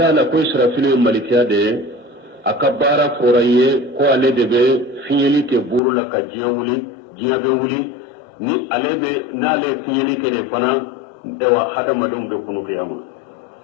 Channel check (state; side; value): drops out; right; at 5.8 s